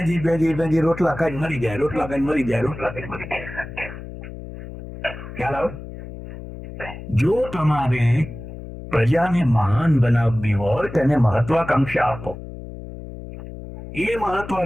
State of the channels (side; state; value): left; noise; hum, 12 dB below the sound